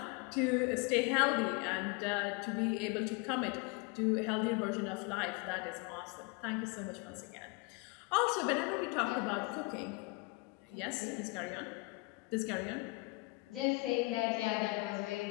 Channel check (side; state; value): right; quieter; 26.2 dB